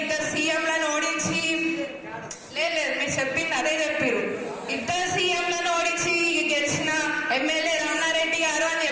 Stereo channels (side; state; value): both; identical; correlation 1.00